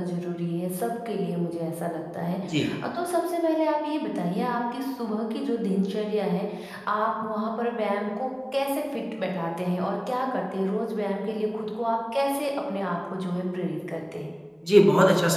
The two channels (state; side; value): identical; both; correlation 1.00